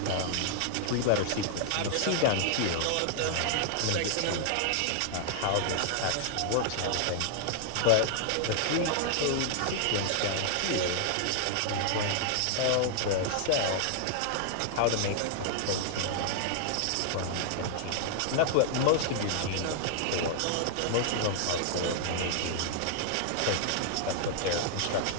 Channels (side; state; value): both; different; correlation -0.01